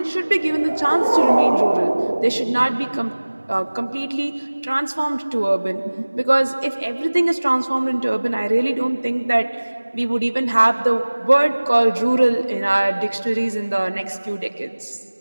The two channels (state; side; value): inverted; both; correlation -1.00